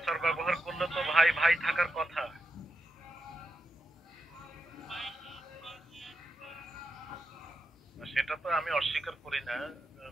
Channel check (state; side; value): normal; both; correlation 0.87